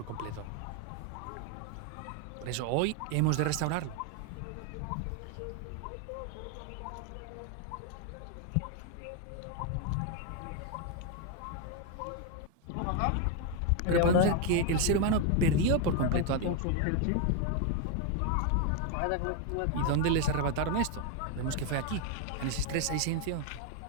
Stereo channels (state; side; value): different; both; correlation 0.01